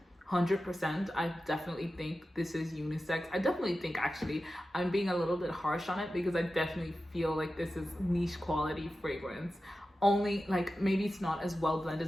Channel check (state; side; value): normal; both; correlation 0.93